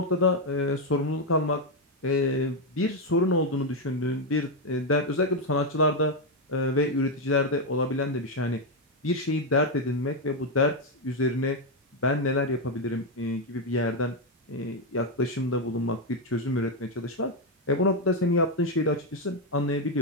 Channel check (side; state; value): both; normal; correlation 0.04